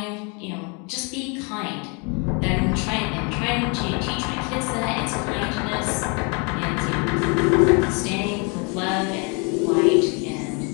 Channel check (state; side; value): quieter; right; 33.1 dB